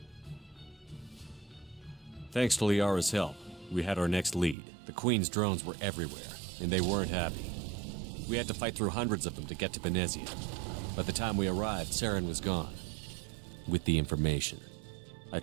Thanks to Liara's help, we had our next lead. The Queen's drones were everywhere, and they weren't happy. We had to fight through hundreds of them to get to Benezia. By the time we arrived, Saren was gone. With the information. I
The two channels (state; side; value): drops out; left; at 4.5 s